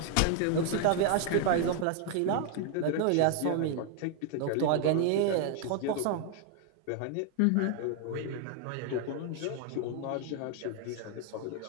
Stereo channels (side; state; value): both; different; correlation 0.01